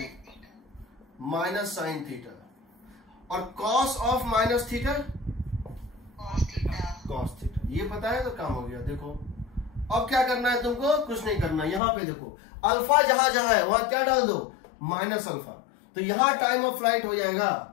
minus sine theta. और cos of minus theta cos theta, ये पता है तो काम हो गया। देखो अब क्या करना है तुमको, कुछ नहीं करना। यहां पे देखो अल्फा जहां जहां है वहां क्या डाल दो माइनस अल्फा, तो यहां टाइम ऑफ फ्लाइट हो जाएगा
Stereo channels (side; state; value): right; drops out; at 11.8 s